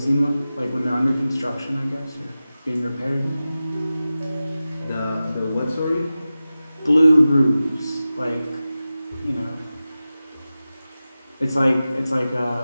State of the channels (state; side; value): inverted; both; correlation -0.95